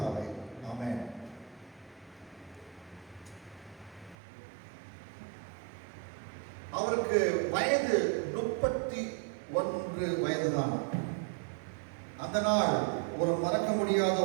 ஆமென். அவருக்கு வயது 31 வயதுதான். அந்த நாள் ஒரு மறக்க முடியாத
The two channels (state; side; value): drops out; left; at 4.2 s